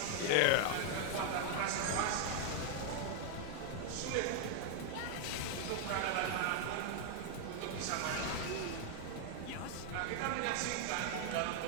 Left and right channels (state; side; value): different; both; correlation 0.01